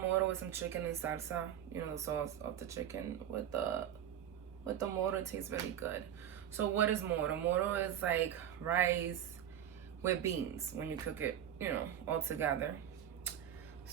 moro with some chicken and salsa. You know, the sauce of the chicken with the moro. It tastes very good. So what is moro? Moro is like rice with beans when you cook it, you know, all together.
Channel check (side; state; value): left; quieter; 10.1 dB